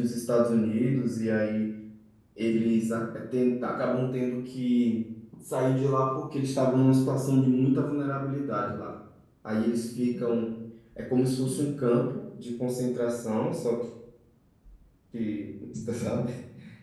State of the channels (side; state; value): both; identical; correlation 1.00